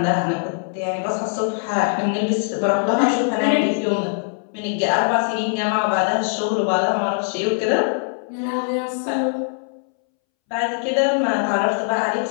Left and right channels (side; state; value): right; silent; 65 dB below the other